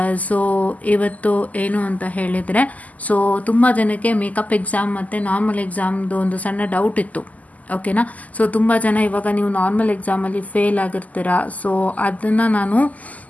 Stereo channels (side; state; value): right; late; 0.076 ms